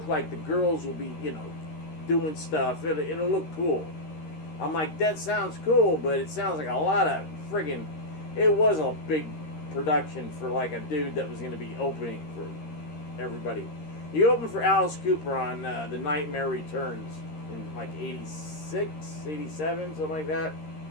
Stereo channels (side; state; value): right; late; 13 ms